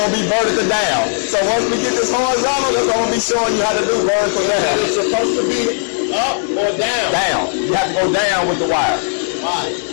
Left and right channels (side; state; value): right; silent; 67 dB below the other